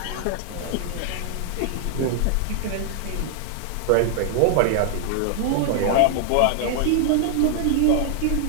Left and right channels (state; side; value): different; both; correlation 0.00